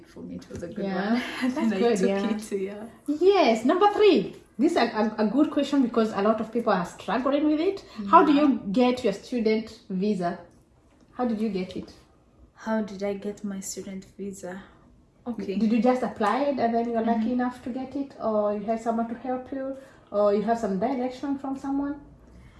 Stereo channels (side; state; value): both; identical; correlation 1.00